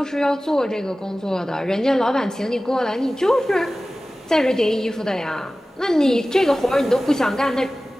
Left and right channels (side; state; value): both; normal; correlation 0.97